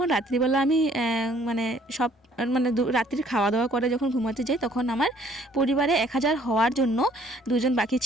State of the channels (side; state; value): both; normal; correlation 0.60